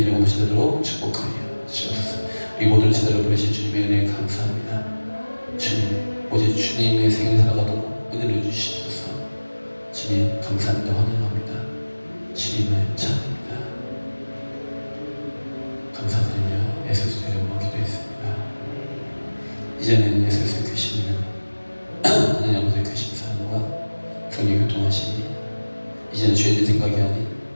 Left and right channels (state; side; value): inverted; both; correlation -1.00